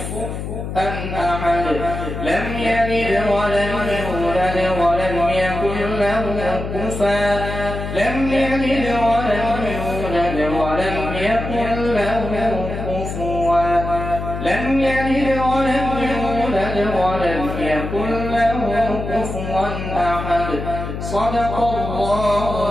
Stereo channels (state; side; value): noise; left; hum, 6 dB below the sound